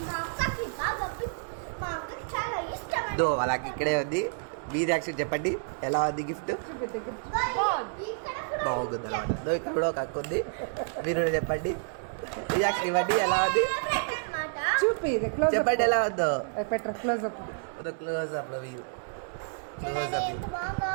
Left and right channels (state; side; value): silent; left; digital silence